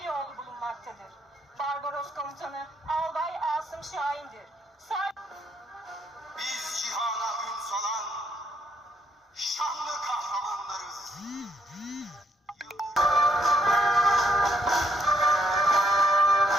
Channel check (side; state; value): both; normal; correlation 0.70